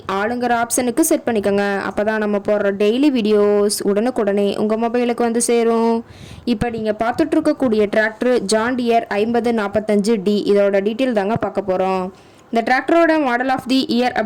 ஆளுங்கிற ஆப்ஷனுக்கு செட் பண்ணிக்கோங்க. அப்போ தான் நம்ம போடுற டெய்லி வீடியோஸ் உடனுக்குடனே உங்கள் மொபைலுக்கு வந்து சேரும். இப்போ நீங்கள் பார்த்துட்ருக்கக்கூடிய டிராக்டர் ஜான் டியர் 5045D. இதோட டீட்டெயில் தாங்க பார்க்க போகிறோம். இந்த டிராக்டரோட மாடல் ஆஃப் தி இயர்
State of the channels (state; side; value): identical; both; correlation 1.00